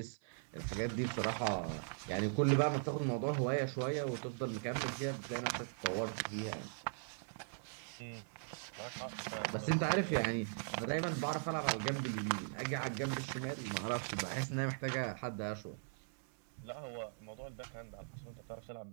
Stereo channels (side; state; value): left; silent; 51 dB below the other